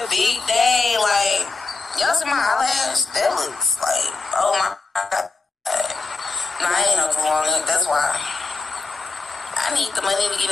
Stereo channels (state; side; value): quieter; right; 3.9 dB